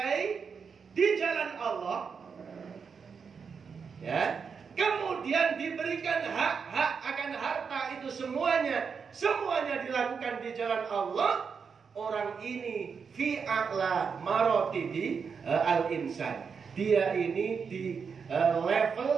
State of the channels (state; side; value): quieter; left; 5.9 dB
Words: di jalan Allah. Ya. Kemudian diberikan hak-hak akan harta itu semuanya dilakukan di jalan Allah. Orang ini fi a'la maratibi al-insan. Dia ini di